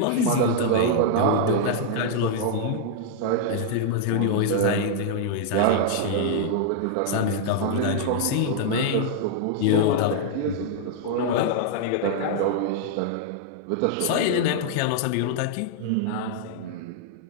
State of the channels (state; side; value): different; both; correlation -0.01